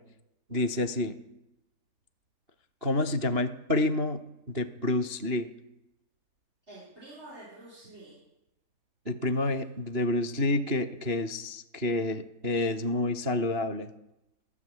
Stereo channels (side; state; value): left; late; 3.0 ms